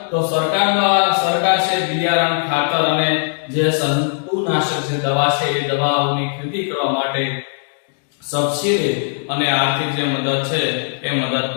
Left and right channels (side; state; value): right; silent; digital silence